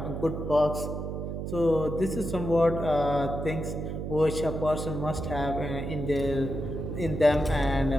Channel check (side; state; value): right; noise; hum, 5 dB below the sound